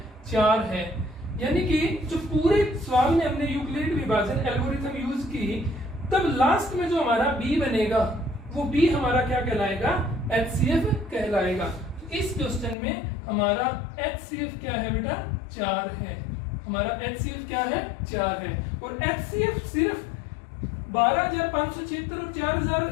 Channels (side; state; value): right; drops out; at 12.8 s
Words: 4 है। यानी कि जो पूरे सवाल में हमने यूक्लिड विभाजन एल्गोरिथम यूज की, तब लास्ट में जो हमारा b बनेगा वो b हमारा क्या कहलाएगा, HCF कहलाएगा। इस क्वेश्चन में हमारा HCF क्या है बेटा, 4 है। हमारा HCF क्या है, 4 है। और HCF सिर्फ 12,576 और